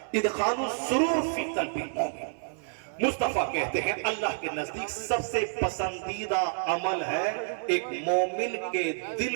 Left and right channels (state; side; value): silent; left; 59 dB below the other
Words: ادخال السرور فی قلب المؤمن. مصطفیٰ کہتے ہیں اللہ کے نزدیک سب سے پسندیدہ عمل ہے ایک مومن کے دل